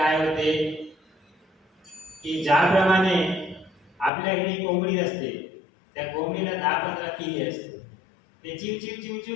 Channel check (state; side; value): drops out; right; at 4.1 s